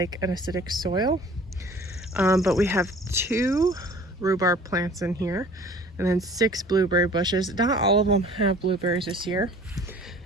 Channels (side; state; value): both; normal; correlation 0.48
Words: an acidic soil. But we have 2 rhubarb plants in here and then 6 blueberry bushes. Not all of them have blueberries this year,